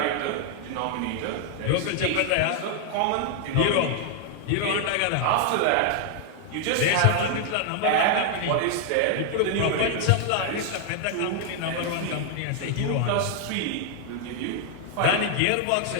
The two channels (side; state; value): both; different; correlation 0.00